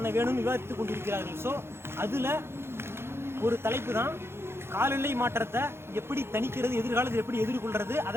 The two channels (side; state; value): left; late; 0.12 ms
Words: வேணும்னு விவாதித்து கொண்டிருக்கிறார்கள். ஸோ அதில் ஒரு தலைப்பு தான் காலநிலை மாற்றத்தை எப்படி தணிக்கிறது, எதிர்காலத்தில் எப்படி எதிர்கொள்கிறது,